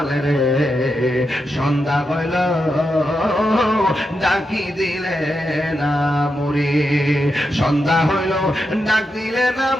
রে। সন্ধ্যা হইল ডাকি দিলে না মুরে, সন্ধ্যা হইল ডাক দিলে না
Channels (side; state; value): both; normal; correlation 0.86